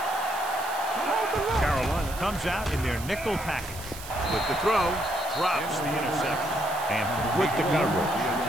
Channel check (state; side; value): noise; right; hiss, 13 dB below the sound